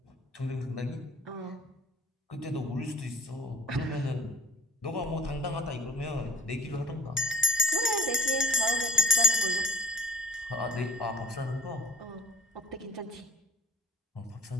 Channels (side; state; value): both; normal; correlation 0.39